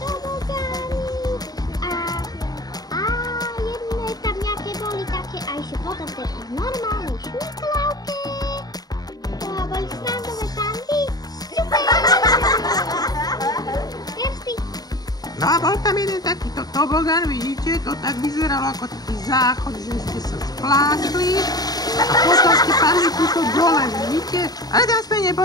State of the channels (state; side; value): late; right; 0.19 ms